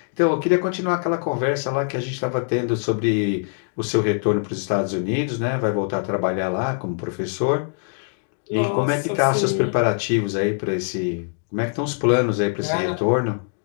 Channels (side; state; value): right; silent; digital silence